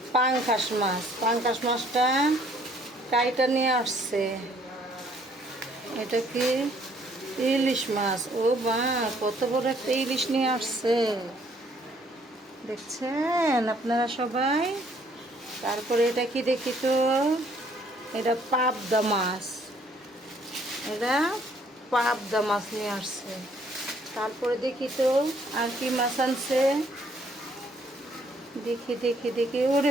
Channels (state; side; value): normal; both; correlation 0.63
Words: পাঙ্কাশ মাছ। পাঙ্কাশ মাছটা কাইটা নিয়ে আসছে। এটা কি ইলিশ মাছ। ও বা, কত বড় একটা ইলিশ নিয়ে আসছে, দেখছেন আপনারা সবাই। তারপরে এটা কি দেখি তো, এটা পাবদা মাছ, এটা পাবদা মাছ নিয়ে আসছে। তারপরে দেখি তো আর কি মাছ আনছে, দেখি দেখি দেখি। ওরে